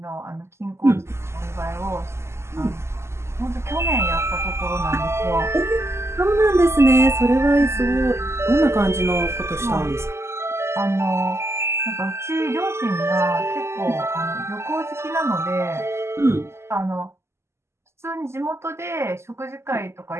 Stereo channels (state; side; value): late; left; 0.13 ms